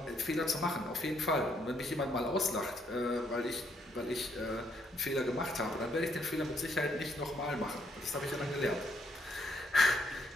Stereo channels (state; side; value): normal; both; correlation 0.72